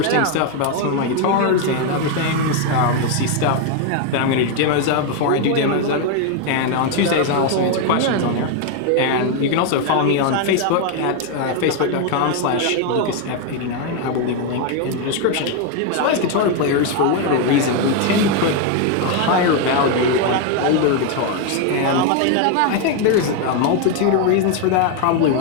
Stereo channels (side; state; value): both; different; correlation 0.01